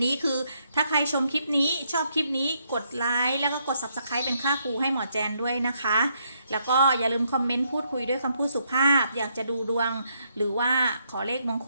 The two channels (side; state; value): both; inverted; correlation -0.75